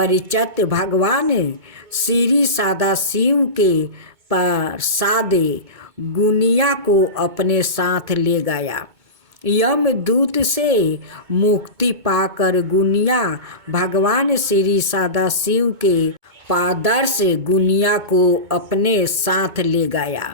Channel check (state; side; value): late; left; 2.2 ms